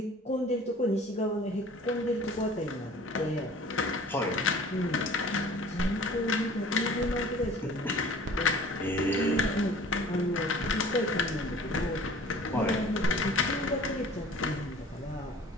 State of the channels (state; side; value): normal; both; correlation 0.47